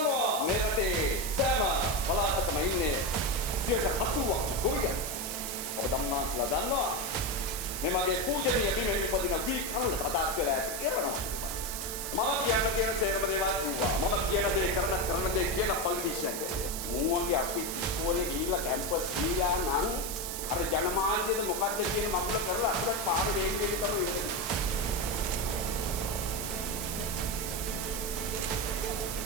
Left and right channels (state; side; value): noise; right; hiss, 5 dB below the sound